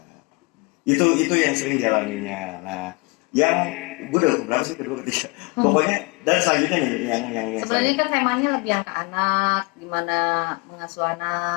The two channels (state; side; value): quieter; right; 28.9 dB